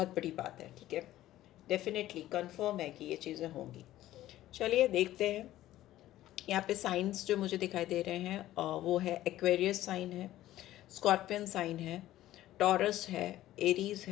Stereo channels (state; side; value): quieter; right; 14.4 dB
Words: बड़ी बात है। ठीक है, डेफिनेटली कंफर्म है कि ये चीज़ें होंगी। चलिए देखते हैं। यहाँ पे साइंस जो मुझे दिखाई दे रहे हैं वो है एक्वेरियस साइन है, स्कॉर्पियन साइन है, टॉरस है, एरीज